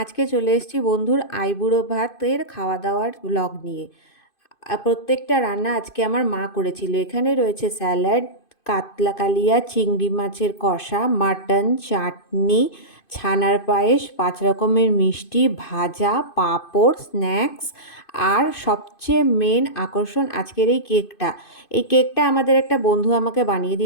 আজকে চলে এসেছি বন্ধুর আইবুড়ো ভাতের খাওয়া দাওয়ার ব্লগ নিয়ে। প্রত্যেকটা রান্না আজকে আমার মা করেছিল। এখানে রয়েছে স্যালাড, কাতলা কালিয়া, চিংড়ি মাছের কষা, মাটন, চাটনি, ছানার পায়েস, 5 রকমের মিষ্টি, ভাজা, পাঁপড়, স্ন্যাক্স আর সবচেয়ে মেন আকর্ষণ আজকের এই কেকটা। এই কেকটা আমাদের একটা বন্ধু আমাকে বানিয়ে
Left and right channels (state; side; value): late; right; 2.5 ms